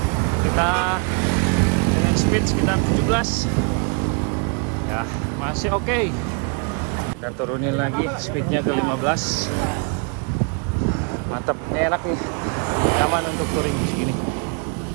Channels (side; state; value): left; quieter; 35.8 dB